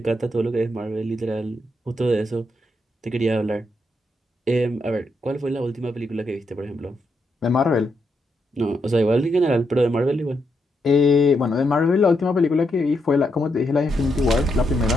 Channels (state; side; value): normal; both; correlation 0.80